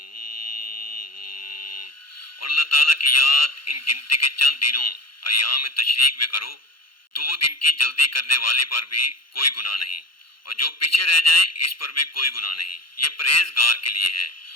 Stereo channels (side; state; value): right; late; 0.73 ms